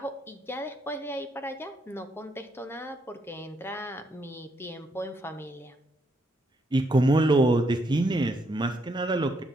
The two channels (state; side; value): normal; both; correlation 0.75